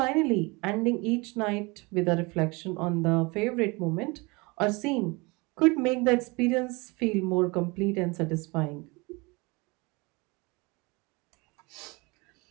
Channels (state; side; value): quieter; left; 26.3 dB